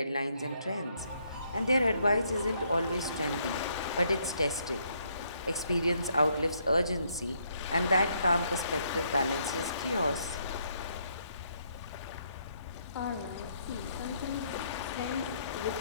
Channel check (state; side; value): inverted; both; correlation -0.72